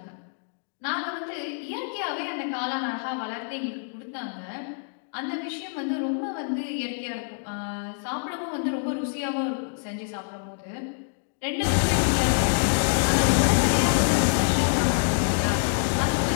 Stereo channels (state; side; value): silent; right; digital silence